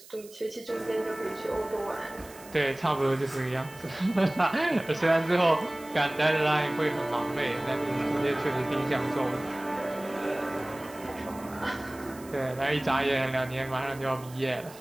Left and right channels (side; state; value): right; noise; hiss, 20 dB below the sound